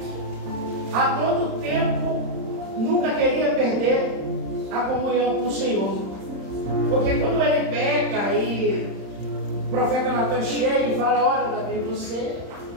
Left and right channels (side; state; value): left; late; 31 ms